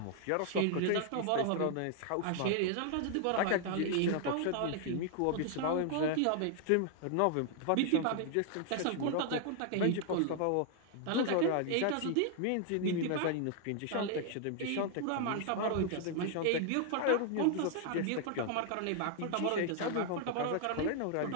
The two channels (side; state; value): both; different; correlation 0.00